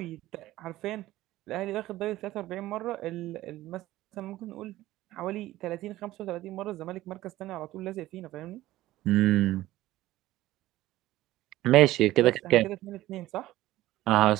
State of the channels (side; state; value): left; quieter; 16.0 dB